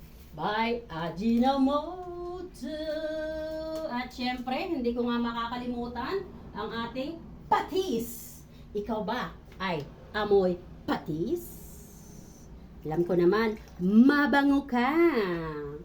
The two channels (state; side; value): identical; both; correlation 1.00